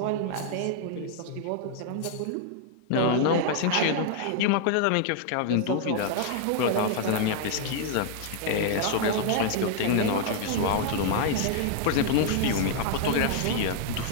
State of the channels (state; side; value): different; both; correlation 0.00